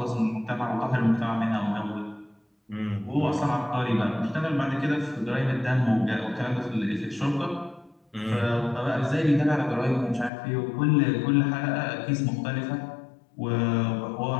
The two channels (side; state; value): right; drops out; at 10.3 s